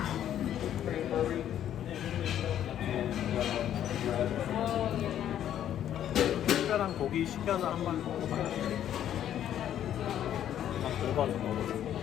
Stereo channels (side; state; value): right; quieter; 10.7 dB